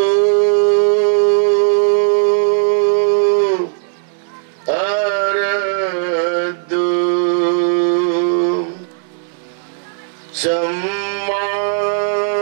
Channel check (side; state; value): left; silent; digital silence